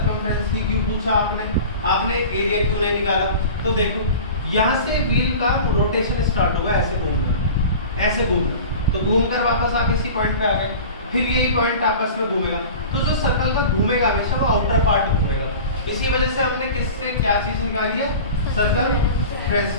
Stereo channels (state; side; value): inverted; both; correlation -0.37